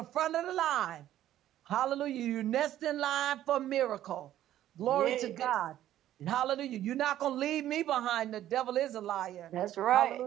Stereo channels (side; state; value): left; quieter; 12.6 dB